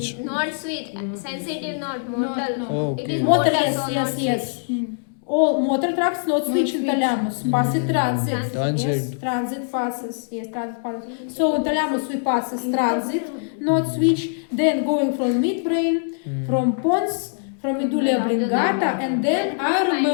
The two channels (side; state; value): right; silent; 64 dB below the other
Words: Not sweet, sensitive, not motor. Oh, It okay. is Motor, motor, yes, so yes, not yes. sweet. All motor tracts not switch in thalamus. Passes transit. Transit. Yes, transit passes. Yes, transit passes. So in thalamus we passes transit, not switch. Then going from midbrain, from pons, from medulla oblongata, and then I